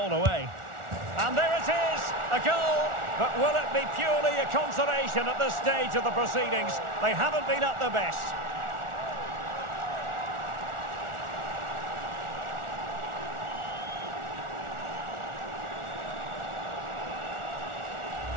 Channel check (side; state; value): left; late; 1.4 ms